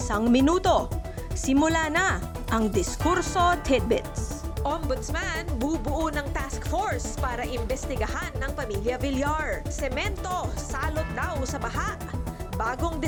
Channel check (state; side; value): identical; both; correlation 1.00